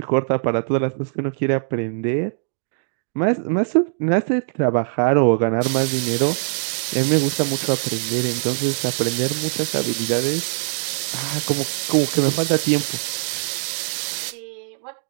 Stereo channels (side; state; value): left; silent; digital silence